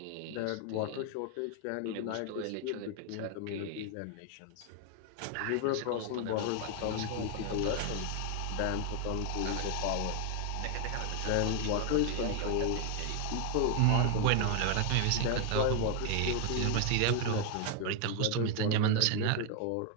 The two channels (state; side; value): different; both; correlation 0.00